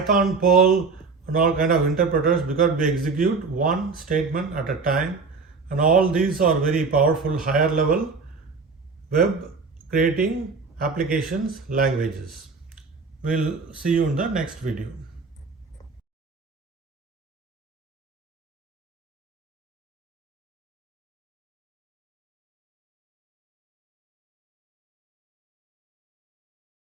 Perl, and all kind of interpreters because we execute one statement at a time. And all these are very powerful higher level web creating applications languages. We'll see you in the next video.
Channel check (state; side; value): quieter; left; 4.5 dB